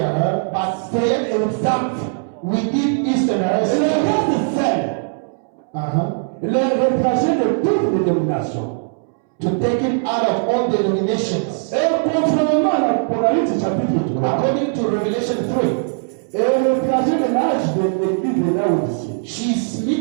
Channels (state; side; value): silent; left; 66 dB below the other